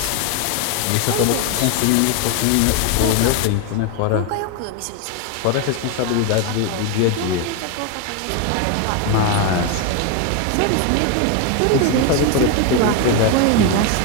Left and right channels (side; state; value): both; different; correlation 0.01